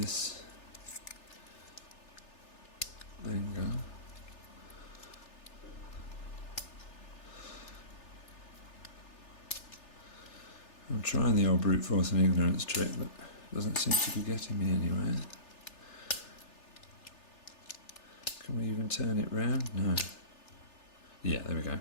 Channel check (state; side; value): late; right; 3.4 ms